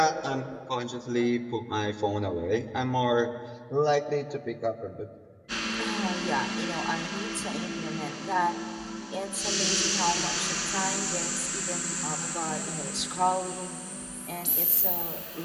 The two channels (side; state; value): both; identical; correlation 1.00